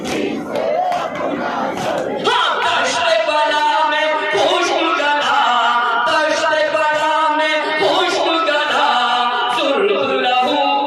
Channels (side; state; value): both; identical; correlation 1.00